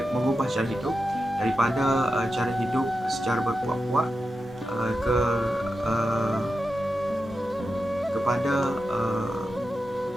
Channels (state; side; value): normal; both; correlation 0.90